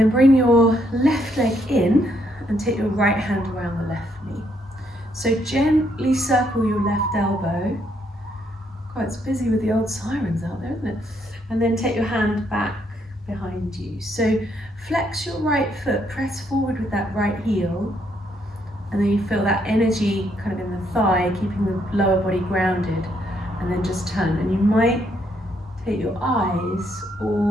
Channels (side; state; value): both; normal; correlation 0.73